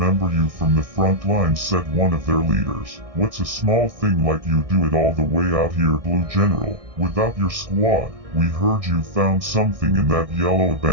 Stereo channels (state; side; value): late; left; 1.6 ms